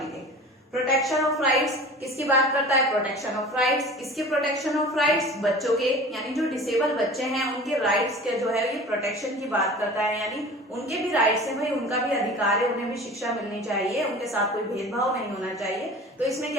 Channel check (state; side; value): normal; both; correlation 0.39